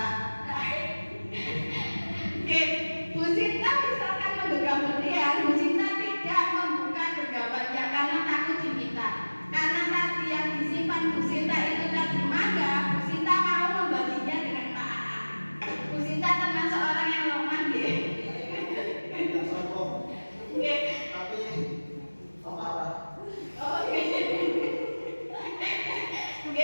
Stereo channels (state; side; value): inverted; both; correlation -1.00